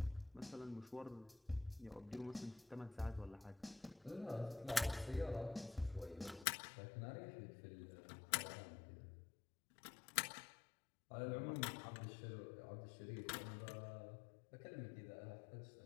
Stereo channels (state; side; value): drops out; right; at 6.5 s